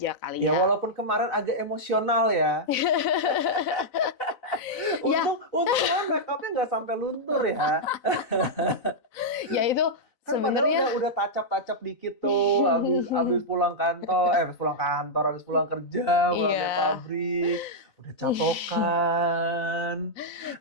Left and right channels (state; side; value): late; right; 4.0 ms